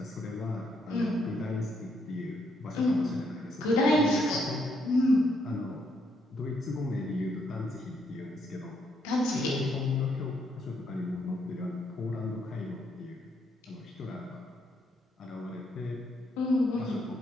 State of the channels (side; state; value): both; normal; correlation 0.74